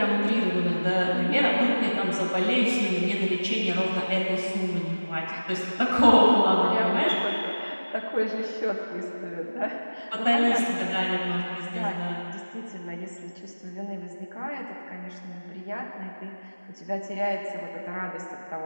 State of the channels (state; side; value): inverted; both; correlation -1.00